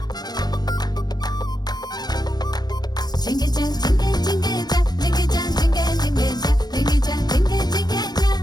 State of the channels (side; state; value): right; late; 0.19 ms